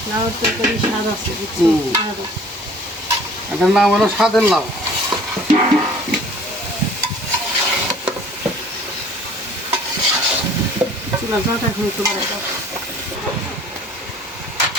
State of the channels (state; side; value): normal; both; correlation 0.51